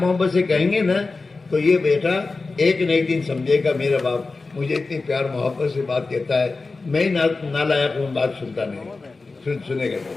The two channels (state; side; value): quieter; right; 3.8 dB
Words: سے کہیں گے نا تو یہ بیٹا ایک نہ ایک دن سمجھے گا میرا باپ مجھے اتنی پیار محبت سے بات کہتا ہے، میں نالائق ہوں بات سنتا نہیں. سنے گا.